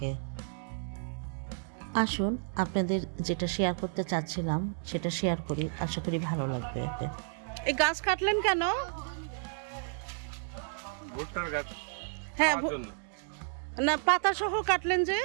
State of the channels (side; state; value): left; silent; digital silence